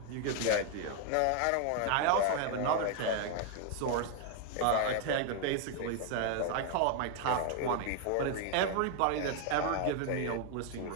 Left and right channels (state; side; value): different; both; correlation 0.00